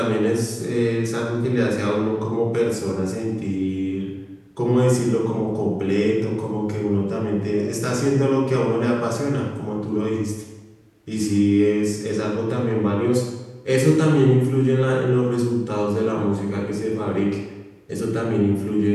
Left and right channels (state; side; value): identical; both; correlation 1.00